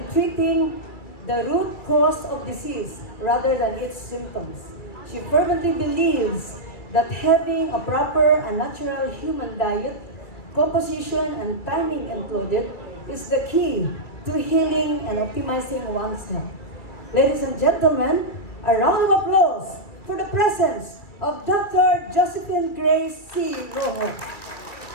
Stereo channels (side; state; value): right; late; 2.6 ms